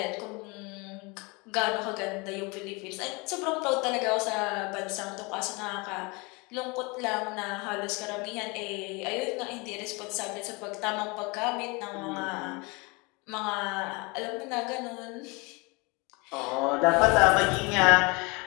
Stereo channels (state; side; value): quieter; right; 27.7 dB